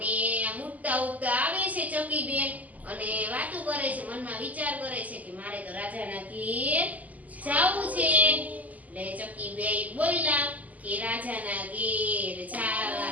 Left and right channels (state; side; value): late; left; 0.077 ms